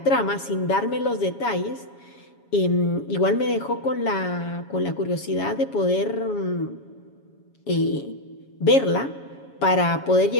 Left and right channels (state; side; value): late; right; 7.2 ms